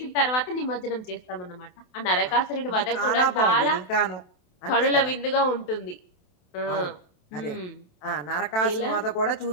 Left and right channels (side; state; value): right; late; 27 ms